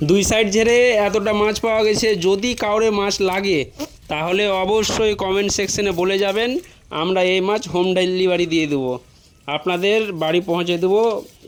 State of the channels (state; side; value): identical; both; correlation 1.00